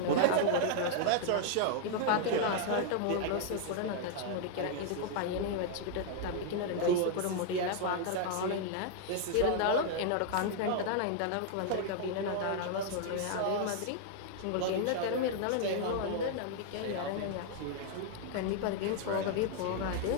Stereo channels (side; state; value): both; different; correlation 0.00